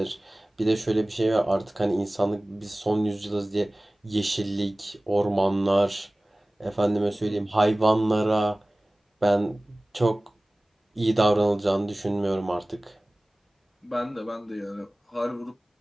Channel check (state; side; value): normal; both; correlation 0.98